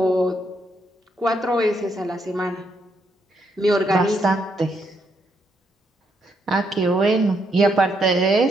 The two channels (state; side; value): normal; both; correlation 0.76